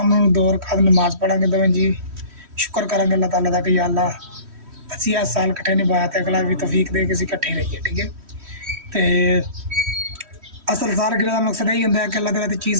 को 2 रकात नमाज पढ़ांगे दोवें जी। शुक्र करांगे अल्लाह ताला का कि या अल्लाह असी 8 साल कट्ठे निभाया तो अगला भी तौफीक दे के असीं कट्ठे रहिए। ठीक है तो असल सालगिरह का मकसद यही होंदा है कि अल्लाह की राह ते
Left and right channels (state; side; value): late; left; 3.1 ms